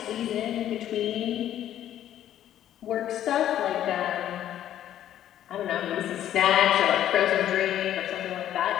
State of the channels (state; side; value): quieter; right; 11.5 dB